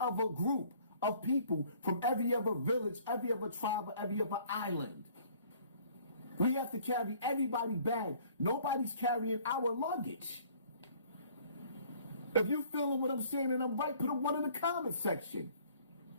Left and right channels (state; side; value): inverted; both; correlation -0.56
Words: group of people from every other village, every other tribe, every other island. We have to carry everybody's bag. Nobody's carrying our luggage. If you feeling what I'm saying and I'm right, put a 1 in the comment section.